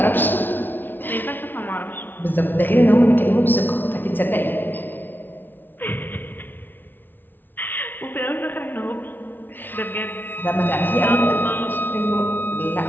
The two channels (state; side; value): late; right; 0.093 ms